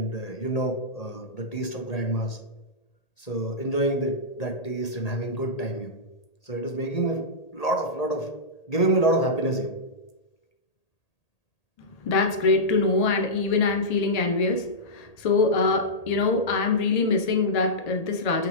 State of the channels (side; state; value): right; late; 1.8 ms